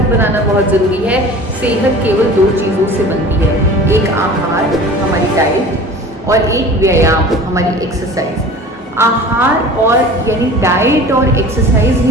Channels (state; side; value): normal; both; correlation 0.41